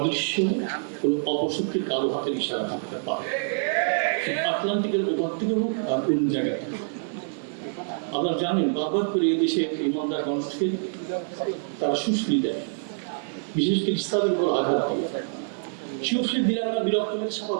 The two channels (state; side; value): silent; left; digital silence